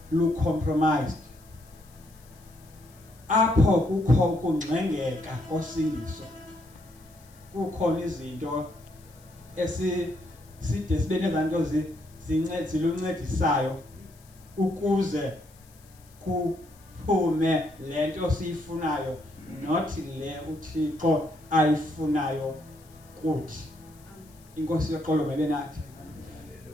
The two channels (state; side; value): noise; left; hiss, 27 dB below the sound